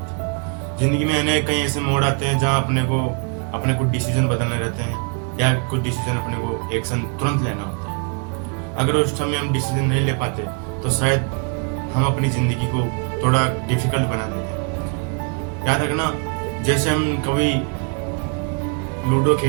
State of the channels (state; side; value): quieter; left; 36.6 dB